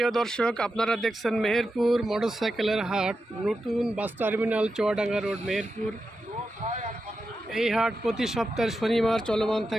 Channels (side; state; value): both; normal; correlation 0.89